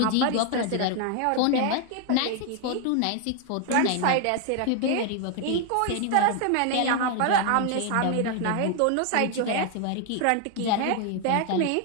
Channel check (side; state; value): both; different; correlation 0.01